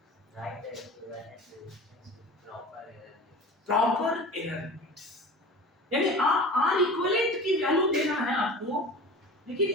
प्रॉपर एरर लिमिट्स, यानी आर इक्विवेलेंट की वैल्यू देना है आपको, लेकिन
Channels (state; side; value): normal; both; correlation 0.37